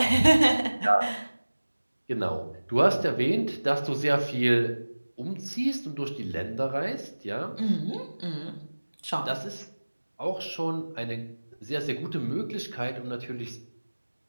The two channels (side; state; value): both; inverted; correlation -1.00